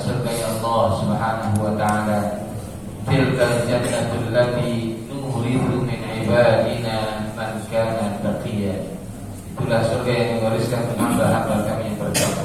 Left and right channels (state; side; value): identical; both; correlation 1.00